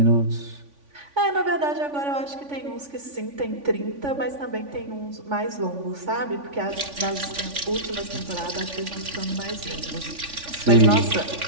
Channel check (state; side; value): late; left; 3.5 ms